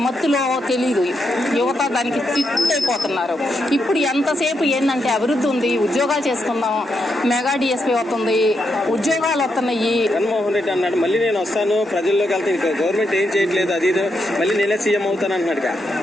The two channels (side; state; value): both; normal; correlation 0.81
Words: మత్తులో తెలీదు, యువత దానికి అయిపోతున్నారు. ఇప్పుడు ఎంతసేపు ఏంటంటే అభివృద్ధి ఉంది, ఉద్యోగాలు చేసుకుందాం, మెగా డిఎస్పీ వస్తుంది, ఉద్యోగాలు వస్తున్నాయి. జగన్మోహన్ రెడ్డి అన్నాడు మళ్ళీ నేను వస్తాను ప్రజల్లోకి వెళ్తాను, గవర్నమెంట్ ఏం చేయట్లేదు అది మళ్ళీ నేనే సీఎం అవుతాను అన్నాడు.